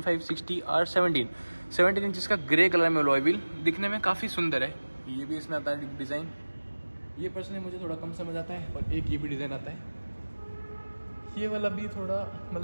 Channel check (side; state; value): both; inverted; correlation -1.00